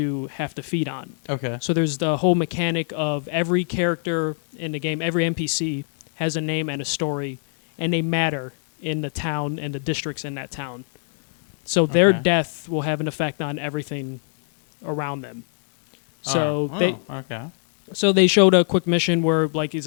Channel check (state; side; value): silent; right; digital silence